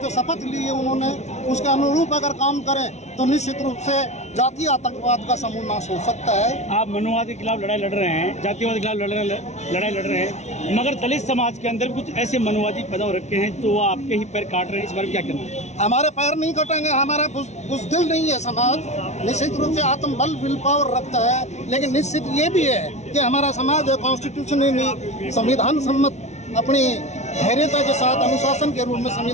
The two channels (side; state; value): right; late; 0.32 ms